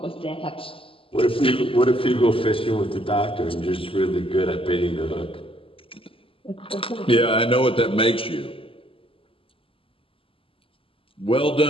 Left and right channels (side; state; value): right; late; 0.26 ms